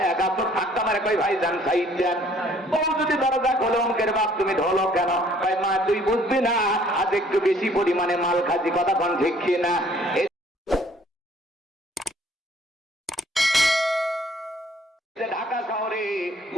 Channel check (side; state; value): both; normal; correlation 0.59